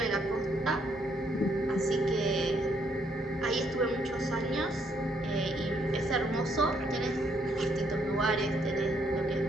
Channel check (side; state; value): both; normal; correlation 0.71